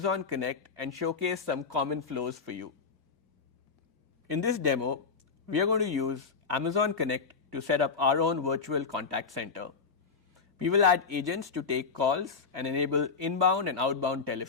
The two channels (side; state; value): right; quieter; 5.2 dB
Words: Connect and showcase some common flows for you. In this demo, we are going to use Amazon Connect to set up our own virtual contact center. We will add agents to take calls and enable inbound and outbound